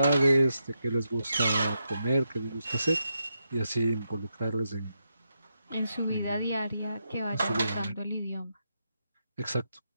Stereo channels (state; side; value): inverted; both; correlation -0.84